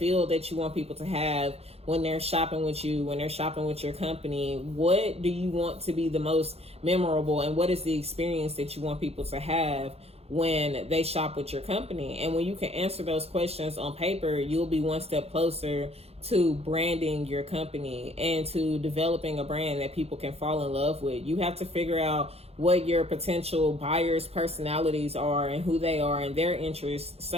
that you want people to have when they're shopping with you, when they're shopping with your company. What do you want to be the most memorable, and what is the experience that you want people to have when they shop with your company? And when you can answer those questions on paper, you'll be one step closer to branding your company and to developing a brand that people can fall in love with. You have to figure out what your potential buyers' personalities are and who they are and their interests,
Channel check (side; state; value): left; late; 0.29 ms